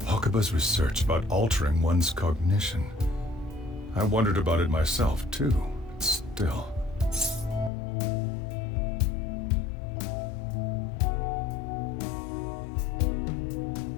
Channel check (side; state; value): right; drops out; at 7.7 s